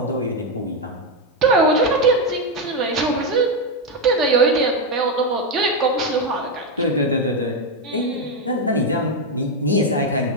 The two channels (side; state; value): both; normal; correlation 0.06